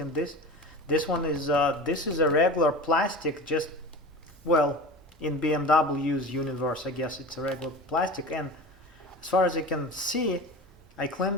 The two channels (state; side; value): normal; both; correlation 0.33